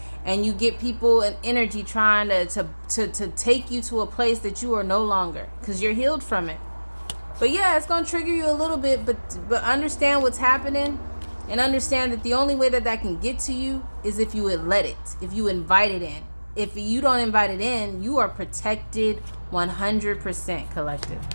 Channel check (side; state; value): both; inverted; correlation -1.00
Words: and you get people and energy trying to take you to a place that you are no longer, because you're healed from it. But yeah, it's going to trigger you a little bit, but understand what's happening, and understand that the only way that can get to you is if you would let it, if you invite it in. If you don't invite it in, you are protected 100%, collective.